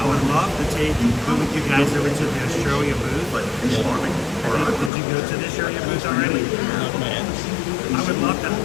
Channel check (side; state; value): right; drops out; at 4.9 s